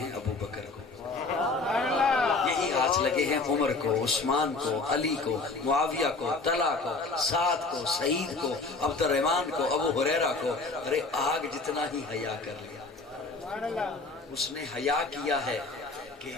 ابو بکر کو، یہی ہاتھ لگے ہیں عمر کو، عثمان کو، علی کو، معاویہ کو، طلحہ کو، سعد کو، سعید کو، عبد الرحمن کو، ابو ہریرہ کو۔ ارے آگ جتنا ہی حیا کر لیا، اس نے حیا کیا ہے کہ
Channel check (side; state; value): right; quieter; 3.7 dB